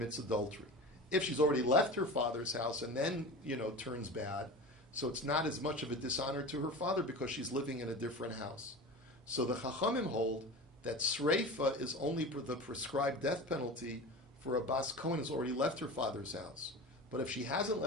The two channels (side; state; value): both; normal; correlation 0.32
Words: adultery. If she's already left her father's house and then turns bad, so it's not as much of a dishonor to her father because she's living in a different house. So the Chachamim hold that sreifa is only the prescribed death penalty for a bas kohen who's already left her father's house. But if she hasn't